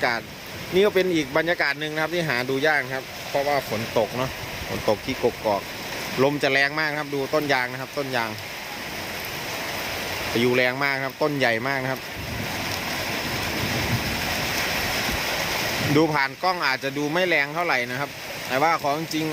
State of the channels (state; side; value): identical; both; correlation 1.00